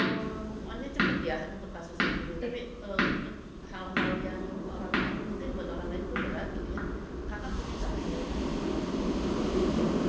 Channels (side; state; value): both; identical; correlation 1.00